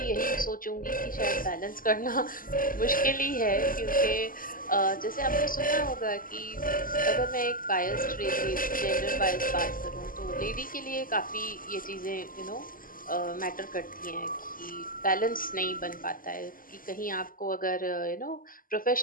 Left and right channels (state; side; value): late; right; 0.41 ms